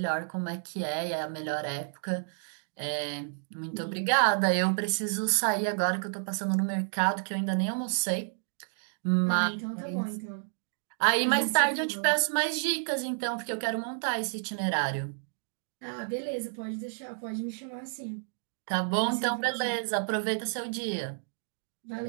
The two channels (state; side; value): silent; left; digital silence